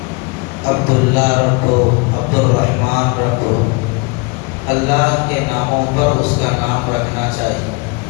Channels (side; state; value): right; quieter; 28.7 dB